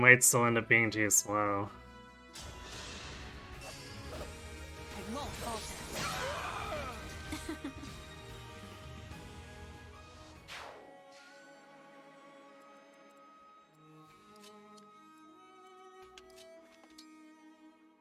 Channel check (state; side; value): identical; both; correlation 1.00